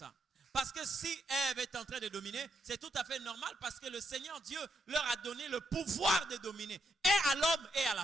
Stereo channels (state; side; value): normal; both; correlation 0.80